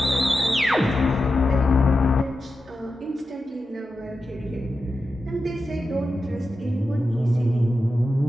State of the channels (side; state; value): both; normal; correlation 0.91